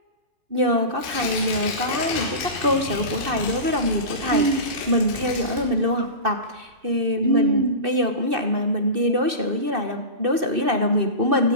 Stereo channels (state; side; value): late; left; 2.6 ms